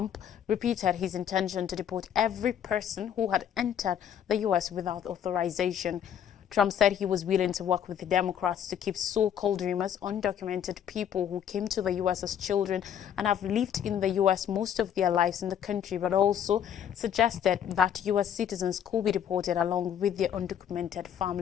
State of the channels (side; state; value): right; quieter; 9.2 dB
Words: repeated his intention to deport every person who had entered the U.S. without authorization. Trump said he was willing to work with the Democrats to keep so-called dreamers, undocumented people who came to the U.S. as children and have lived in the U.S. most of their lives in the country, but also suggested that U.S. citizens could be deported along with their undocumented